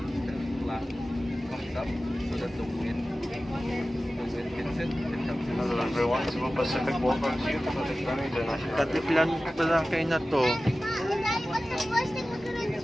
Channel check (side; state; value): both; normal; correlation 0.96